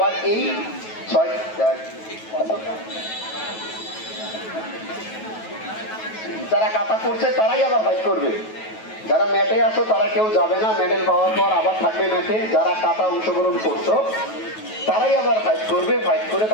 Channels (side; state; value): right; late; 9.2 ms